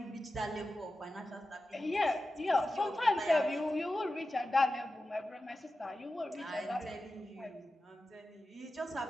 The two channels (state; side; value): normal; both; correlation 0.93